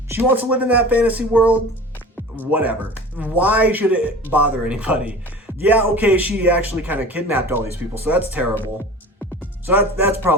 She wants to live in that fantasy world, whatever. Why should it bother anybody? Yeah, okay, she actually kind of kidnapped all these people, so that's terrible. So that's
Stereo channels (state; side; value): normal; both; correlation 0.38